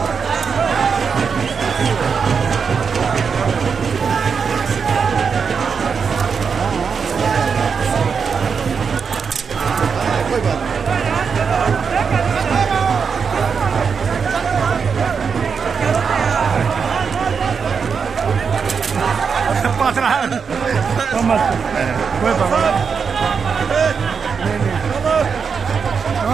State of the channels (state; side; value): quieter; left; 6.0 dB